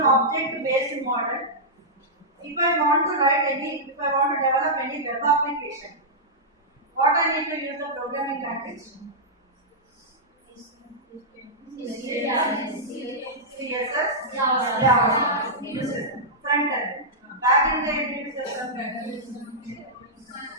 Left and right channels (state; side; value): normal; both; correlation -0.11